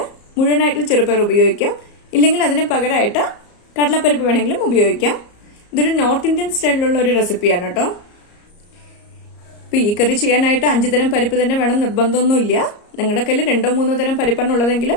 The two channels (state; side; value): late; right; 34 ms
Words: മുഴുവനായിട്ടുള്ള ചെറുപയർ ഉപയോഗിക്കാം, ഇല്ലെങ്കിൽ അതിന് പകരമായിട്ട് കടലപ്പരിപ്പ് വേണമെങ്കിലും ഉപയോഗിക്കാം. ഇതൊരു നോർത്ത് ഇന്ത്യൻ സ്റ്റൈലിലുള്ള ഒരു റെസിപ്പിയാണ് കേട്ടോ. ഇപ്പൊ ഈ കറി ചെയ്യാനായിട്ട് 5 തരം പരിപ്പ് തന്നെ വേണം നിർബന്ധമൊന്നുമില്ല. നിങ്ങളുടെ കയ്യിൽ 2-3 തരം പരിപ്പാണ്